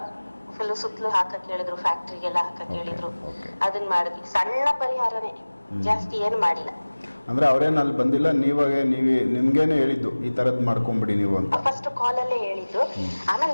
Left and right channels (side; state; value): both; inverted; correlation -1.00